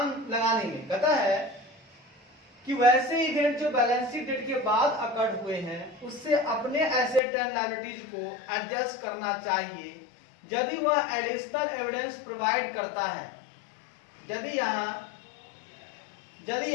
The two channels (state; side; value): drops out; right; at 7.2 s